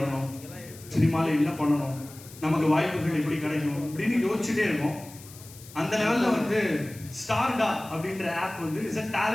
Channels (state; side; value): noise; left; hiss, 19 dB below the sound